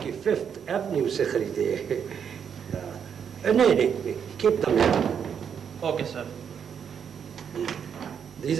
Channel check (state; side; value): quieter; left; 7.6 dB